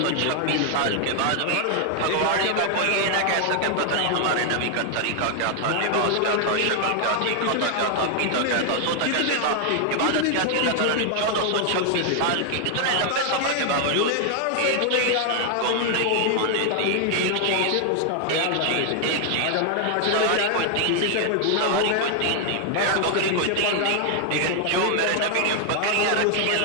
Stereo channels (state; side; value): different; both; correlation 0.00